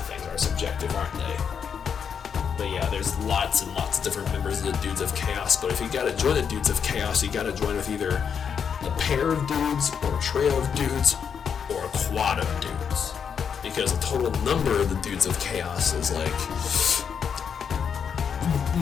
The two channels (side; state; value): right; quieter; 7.1 dB